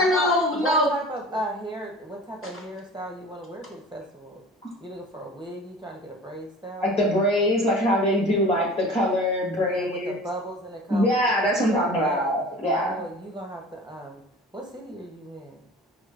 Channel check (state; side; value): normal; both; correlation 0.40